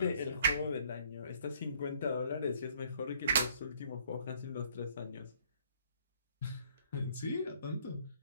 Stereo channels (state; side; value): inverted; both; correlation -0.62